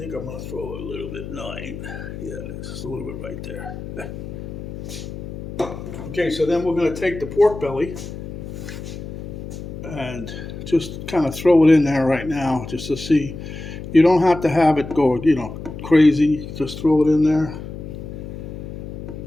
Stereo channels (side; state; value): left; noise; hum, 9 dB below the sound